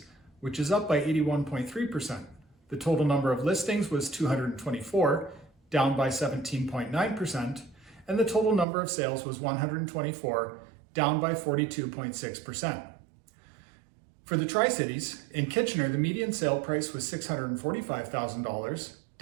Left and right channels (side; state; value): left; drops out; at 8.7 s